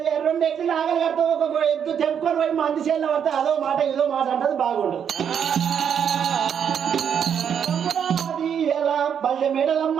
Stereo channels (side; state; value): left; quieter; 8.1 dB